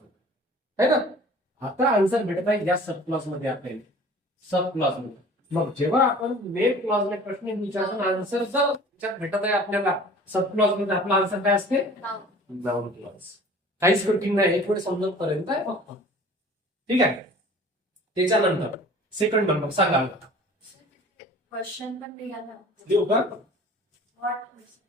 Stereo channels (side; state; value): both; normal; correlation 0.46